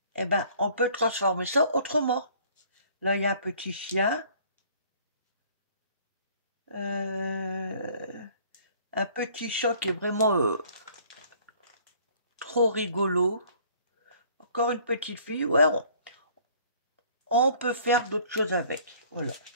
Eh ben, on peut transformer ça autrement. Là, il y a un petit chien. Un petit chat qui est vraiment trop rigolo. Encore une petite fille. Ouais, on peut faire d'autres choses avec. Voilà.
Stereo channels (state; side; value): inverted; both; correlation -0.55